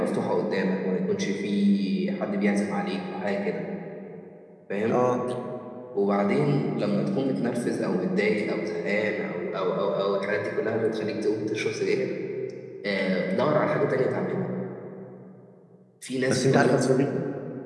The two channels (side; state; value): both; identical; correlation 1.00